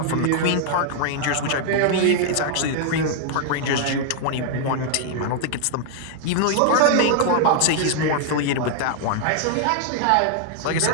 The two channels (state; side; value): different; both; correlation 0.00